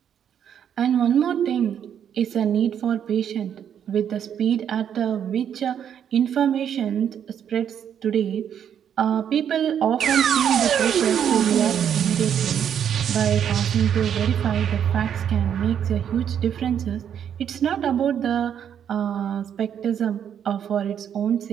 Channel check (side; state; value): left; quieter; 8.8 dB